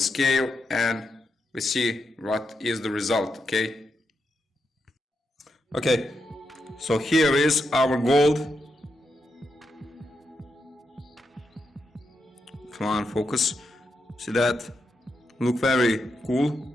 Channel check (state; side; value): normal; both; correlation 0.84